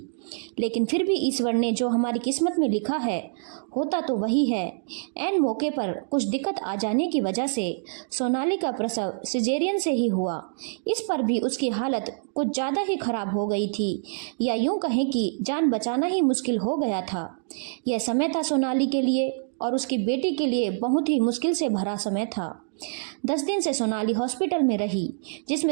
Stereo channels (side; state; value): left; silent; digital silence